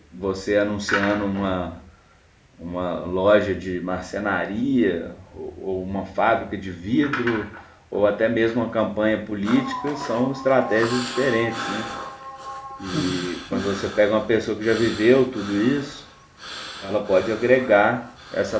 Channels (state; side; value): identical; both; correlation 1.00